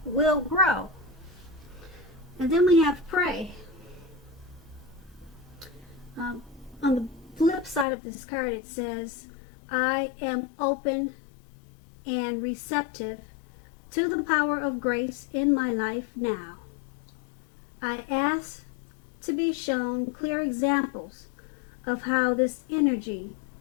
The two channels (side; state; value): right; drops out; at 7.9 s